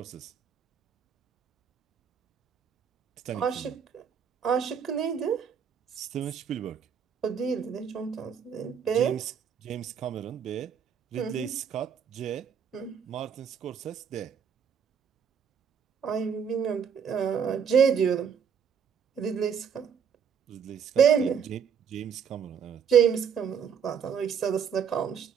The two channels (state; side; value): quieter; left; 7.4 dB